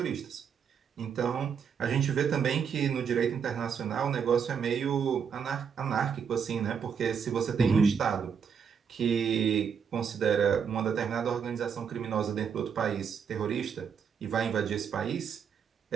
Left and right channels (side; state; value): left; quieter; 7.0 dB